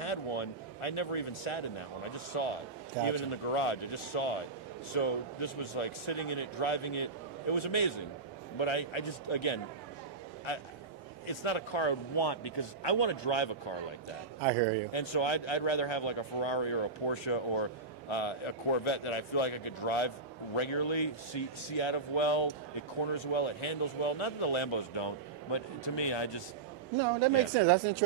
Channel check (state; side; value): quieter; left; 4.1 dB